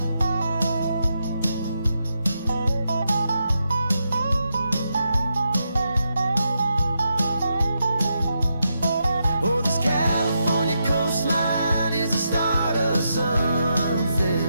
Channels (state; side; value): inverted; both; correlation -0.84